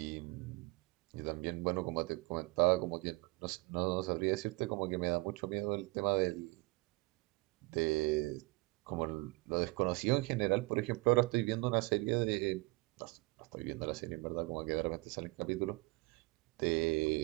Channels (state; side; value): quieter; left; 25.2 dB